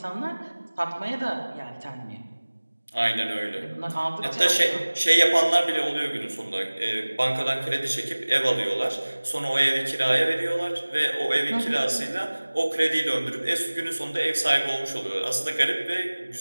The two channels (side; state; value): both; inverted; correlation -1.00